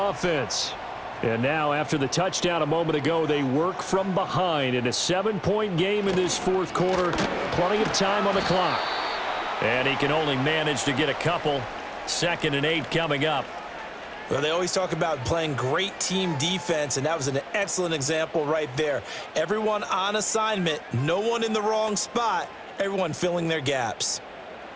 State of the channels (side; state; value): both; identical; correlation 1.00